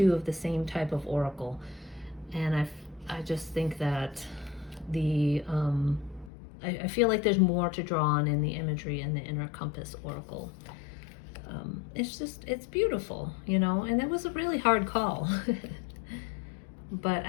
of the same type of oracle. And I just think that I feel like there's more to draw on in the imagery in the Inner Compass Oracle. It's beautiful, you know, and it was a really hard call. But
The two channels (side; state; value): right; drops out; at 6.3 s